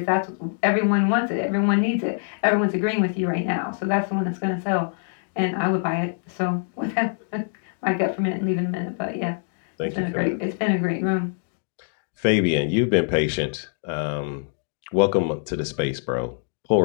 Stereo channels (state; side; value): silent; right; digital silence